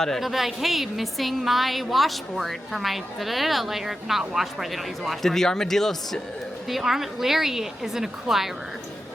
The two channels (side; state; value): both; normal; correlation 0.90